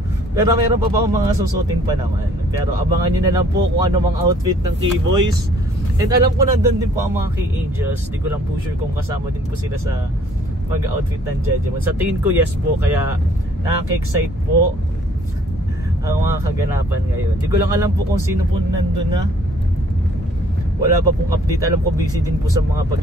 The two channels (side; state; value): both; normal; correlation 0.59